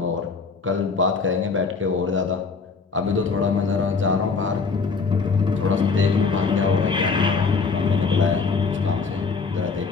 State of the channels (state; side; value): quieter; right; 4.7 dB